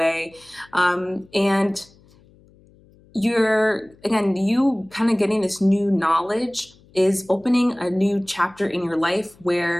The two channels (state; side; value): noise; left; hum, 29 dB below the sound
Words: And you kind of getting this new knowledge is opening a new chapter in your life